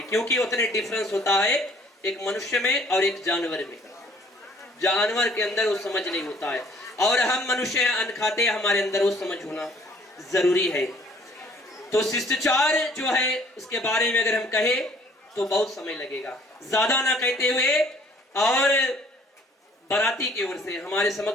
क्योंकि उतने डिफरेंस होता है एक मनुष्य में और एक जानवर में। जानवर के अंदर वो समझ नहीं होता है, और हम मनुष्य अन्न खाते हैं, हमारे अंदर वो समझ होना जरूरी है। तो शिष्टाचार जो है उसके बारे में अगर हम कहें तो बहुत समय लगेगा। ज्यादा ना कहते हुए, और बाराती की ओर से हमारे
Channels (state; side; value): normal; both; correlation 0.58